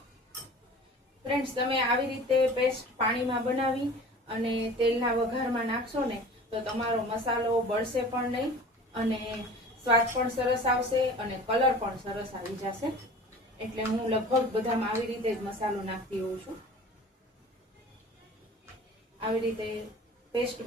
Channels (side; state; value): both; normal; correlation 0.41